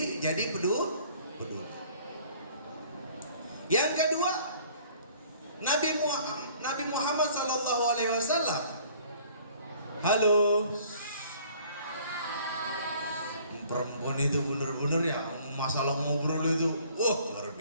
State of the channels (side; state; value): both; inverted; correlation -0.54